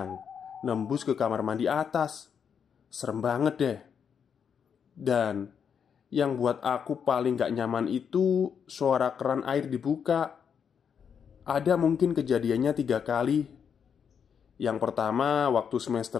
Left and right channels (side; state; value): right; quieter; 7.2 dB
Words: nembus ke kamar mandi atas. Serem banget deh. Dan yang buat aku paling gak nyaman itu suara keran air dibuka. Ada mungkin kejadiannya 3 kali. Yang pertama waktu